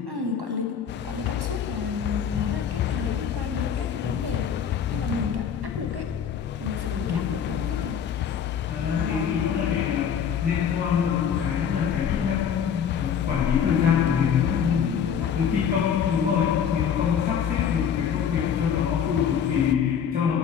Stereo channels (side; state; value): right; quieter; 7.9 dB